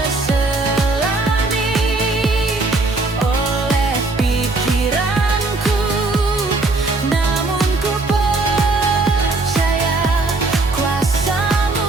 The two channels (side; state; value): left; quieter; 3.3 dB